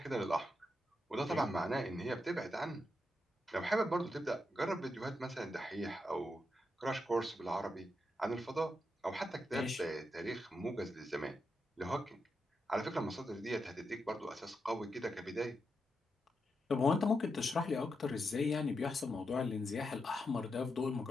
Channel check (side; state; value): both; normal; correlation 0.85